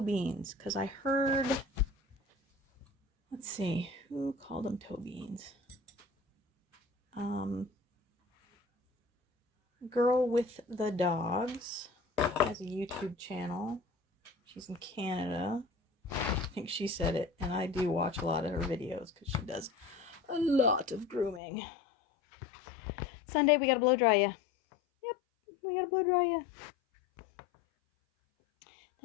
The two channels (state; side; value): drops out; right; at 21.4 s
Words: Because I heard, let's see, who called them toe beans? Girl with the Dogs has a YouTube channel. She's in Canada. I think she said it, and I do watch a lot of her videos because she does a lot of grooming. Sunday, we gotta blow dry you. Yep, we gotta blow dry you.